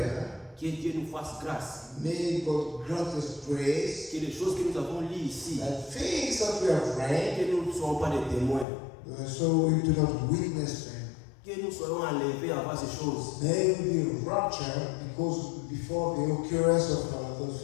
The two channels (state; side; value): drops out; right; at 8.7 s